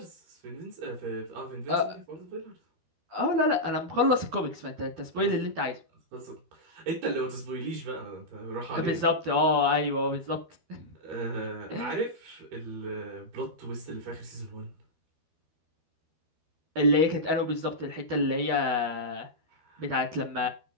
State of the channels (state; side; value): late; left; 12 ms